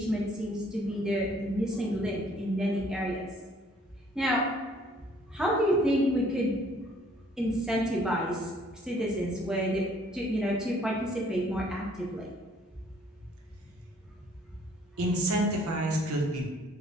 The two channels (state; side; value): normal; both; correlation 0.61